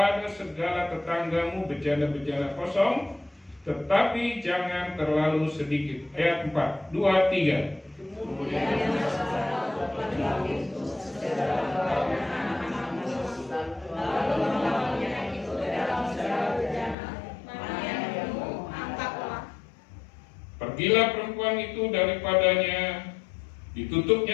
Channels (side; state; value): right; drops out; at 16.9 s